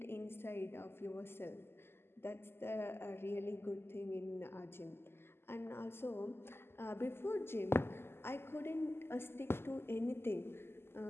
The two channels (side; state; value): right; late; 0.12 ms